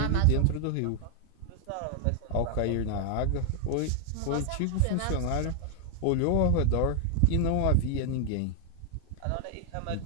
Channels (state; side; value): different; both; correlation 0.00